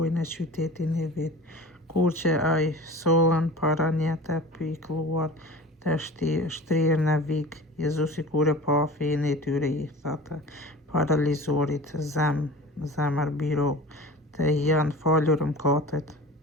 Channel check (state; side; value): normal; both; correlation 0.38